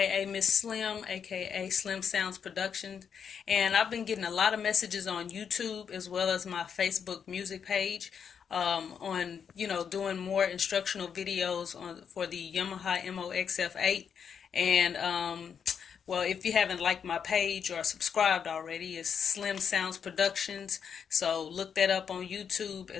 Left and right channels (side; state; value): right; quieter; 7.2 dB